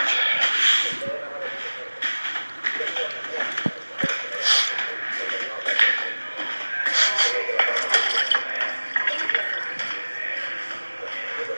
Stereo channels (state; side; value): inverted; both; correlation -1.00